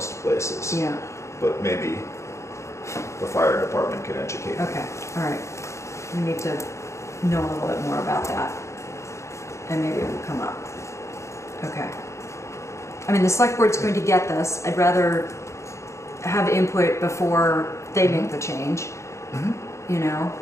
places. Yeah. But maybe the fire department can educate me. Okay. All right. We need to know a little bit more about that, and maybe it will come up. Okay. I mean, the select board's going to get this. I'd rather have input before they make the change. you know,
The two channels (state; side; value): late; right; 0.14 ms